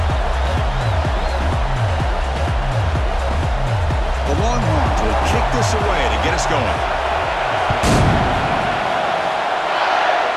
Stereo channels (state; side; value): identical; both; correlation 1.00